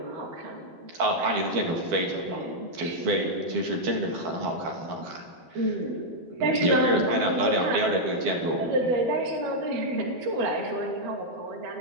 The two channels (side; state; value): left; late; 12 ms